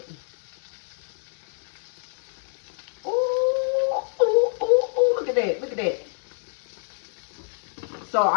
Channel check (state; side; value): silent; right; 61 dB below the other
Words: them. Ooh, ooh, ooh, ooh! Look at that! Look at that! So